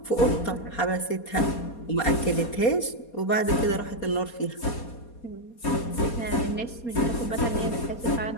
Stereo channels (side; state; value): right; late; 4.2 ms